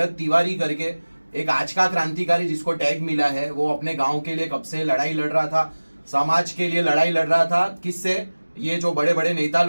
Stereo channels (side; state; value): both; inverted; correlation -1.00